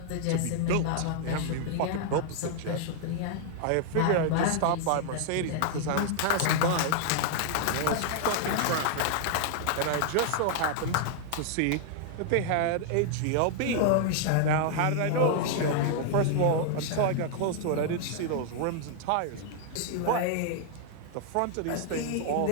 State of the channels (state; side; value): different; both; correlation -0.01